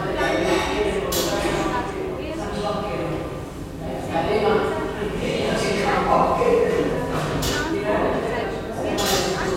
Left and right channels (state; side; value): identical; both; correlation 1.00